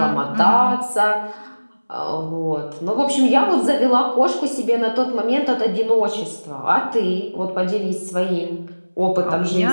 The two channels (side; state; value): both; inverted; correlation -1.00